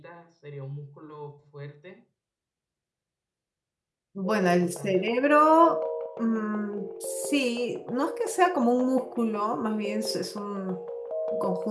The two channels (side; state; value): both; identical; correlation 1.00